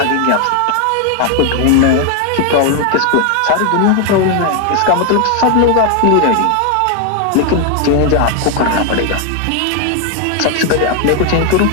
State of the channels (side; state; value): both; different; correlation 0.01